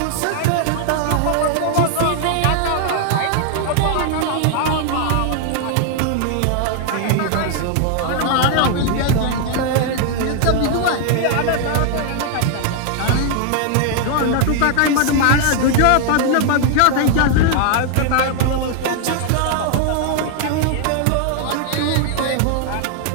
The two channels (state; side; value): different; both; correlation 0.00